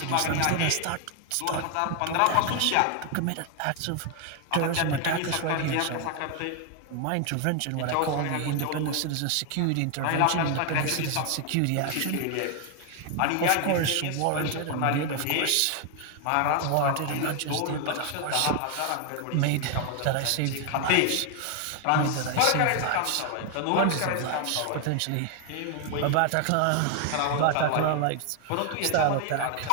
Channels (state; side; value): different; both; correlation 0.00